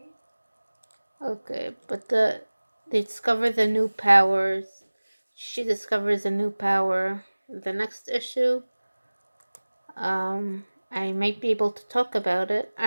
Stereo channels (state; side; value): inverted; both; correlation -1.00